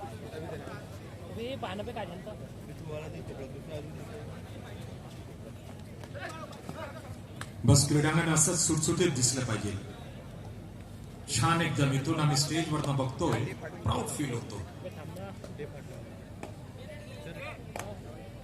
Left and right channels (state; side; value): identical; both; correlation 1.00